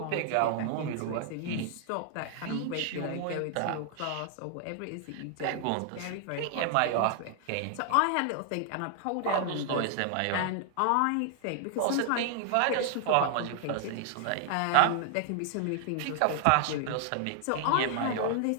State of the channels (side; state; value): both; different; correlation 0.00